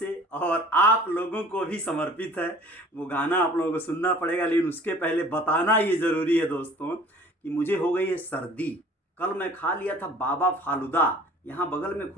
और आप लोगों को भी समर्पित है। वो गाना आप लोगों को सुनना पड़ेगा, लेकिन उसके पहले बताना ये ज़रूरी है दोस्तों कि मुझे हो गई है सर्दी। कल मैं खा लिया था बाबा फालूदा, यहाँ बगल में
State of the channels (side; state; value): both; normal; correlation 0.50